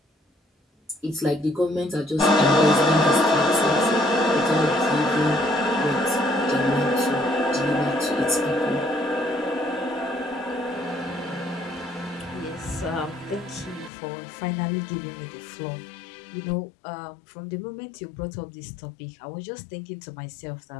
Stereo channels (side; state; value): right; drops out; at 13.9 s